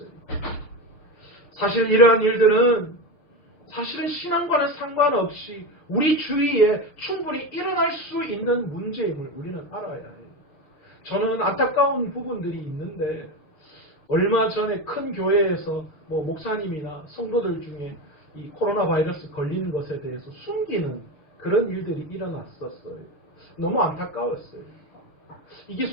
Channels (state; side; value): late; right; 6.4 ms